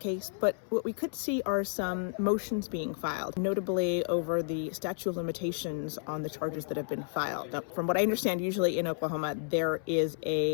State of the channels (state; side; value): silent; right; 57 dB below the other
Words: but what we could see are some motions being filed, notably over the statute of limitations on the charges that have been filed. Now, from what I understand, usually in Oklahoma, there is